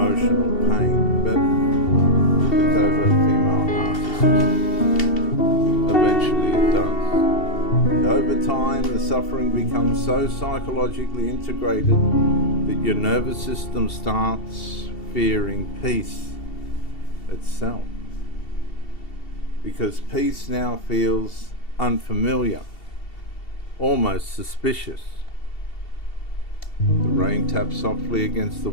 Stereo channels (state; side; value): late; right; 2.7 ms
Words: pain, but the covert female narcissist, eventually it does. And over time, the suffering becomes so psychologically integrated that your nervous system starts fearing peace itself. Because peace now feels unfamiliar, almost suspicious. The rain taps softly against the